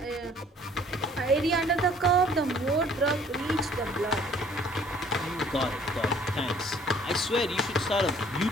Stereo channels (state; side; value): normal; both; correlation 0.56